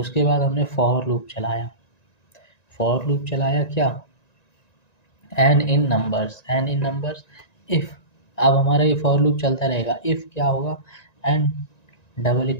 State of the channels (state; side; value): late; right; 1.9 ms